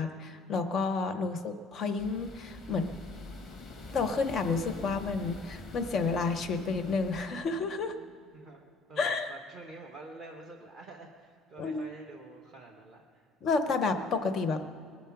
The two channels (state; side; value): quieter; right; 3.6 dB